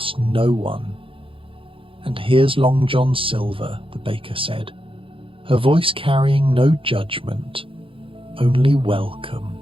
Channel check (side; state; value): left; late; 0.26 ms